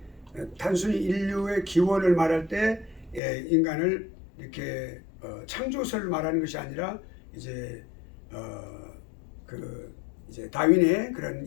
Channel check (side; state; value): right; drops out; at 3.2 s